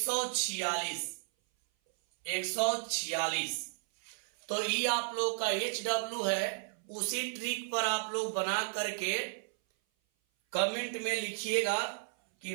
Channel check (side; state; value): left; silent; 55 dB below the other